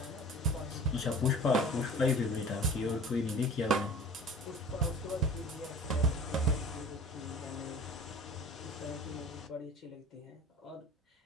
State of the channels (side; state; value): both; normal; correlation 0.42